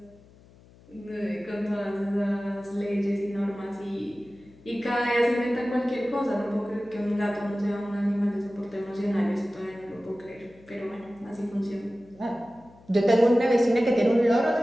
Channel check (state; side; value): noise; left; hum, 25 dB below the sound